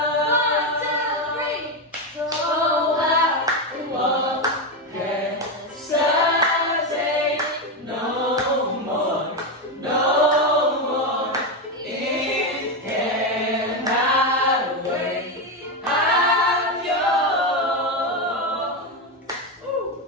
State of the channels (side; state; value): both; normal; correlation 0.11